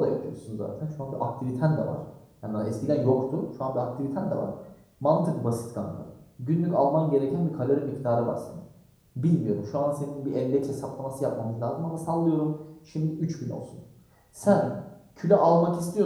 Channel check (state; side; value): identical; both; correlation 1.00